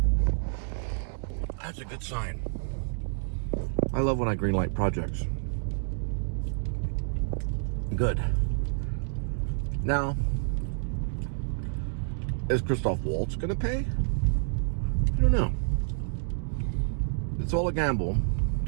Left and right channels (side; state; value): left; silent; digital silence